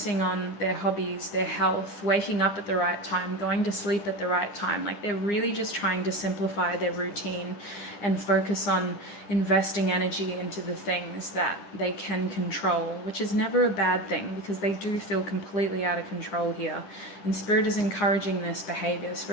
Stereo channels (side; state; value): right; late; 9.8 ms